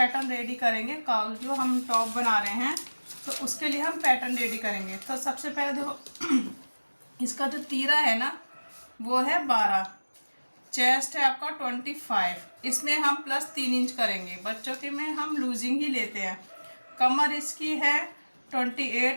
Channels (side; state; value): both; inverted; correlation -1.00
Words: रेडी करेंगे। काउल जो हम टॉप बना रहे हैं तो उसके लिए हम पैटर्न रेडी करेंगे। तो सबसे पहले देखो, इसका जो तीरा है ना वो है 12, चेस्ट है आपका 25, इसमें हम प्लस 3 इंच करेंगे। बच्चों के में हम लूजिंग ही लेते हैं। कमर इसकी है